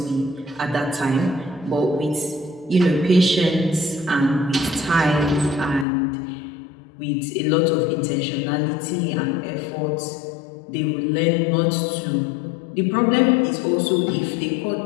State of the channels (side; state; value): right; drops out; at 5.9 s